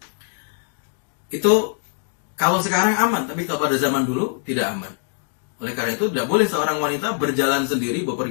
Itu kalau sekarang aman, tapi kalau pada zaman dulu tidak aman. Oleh karena itu tidak boleh seorang wanita berjalan sendiri,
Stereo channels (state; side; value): silent; right; 64 dB below the other